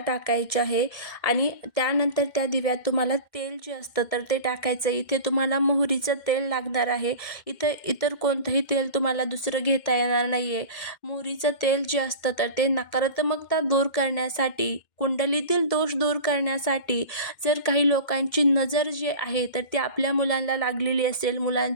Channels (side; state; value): right; late; 2.1 ms